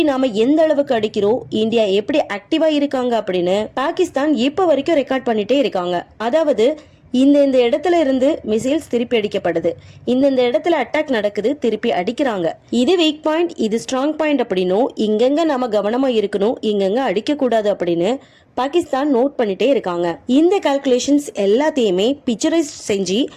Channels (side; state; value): both; identical; correlation 1.00